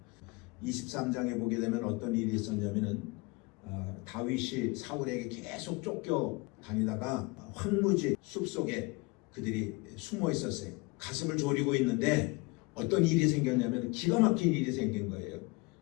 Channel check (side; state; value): right; quieter; 26.1 dB